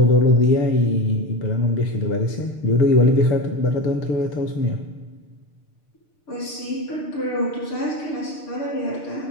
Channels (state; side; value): late; right; 6.7 ms